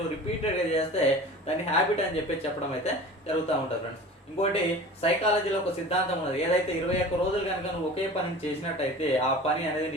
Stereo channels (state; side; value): normal; both; correlation 0.39